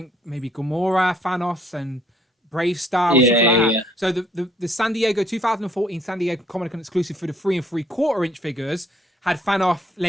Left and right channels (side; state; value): both; normal; correlation 0.65